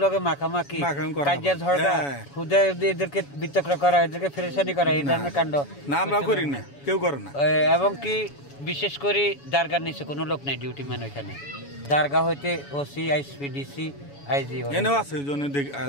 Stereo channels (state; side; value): late; right; 7.1 ms